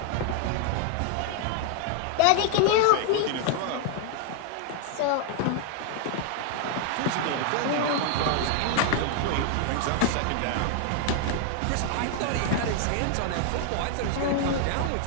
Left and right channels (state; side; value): different; both; correlation 0.00